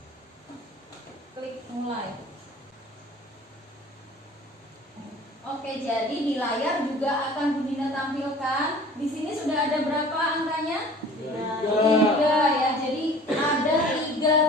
klik mulai. Oke, jadi di layar juga akan Bu Dinda tampilkan. Di sini sudah ada berapa angkanya? 3 ya. Jadi ada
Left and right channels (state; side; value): normal; both; correlation 0.46